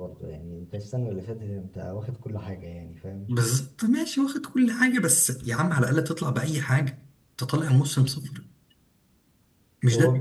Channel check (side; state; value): both; identical; correlation 1.00